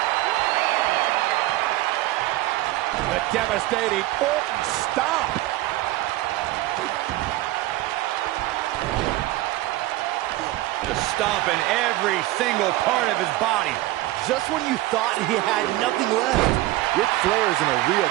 The devastating Orton stomp. The stomp in every single part of his body. Just when you thought he had nothing left, Ric Flair's in a real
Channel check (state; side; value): quieter; left; 17.4 dB